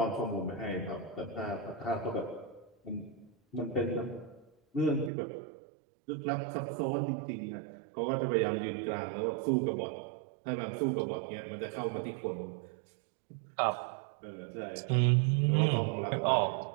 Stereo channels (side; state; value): left; drops out; at 5.1 s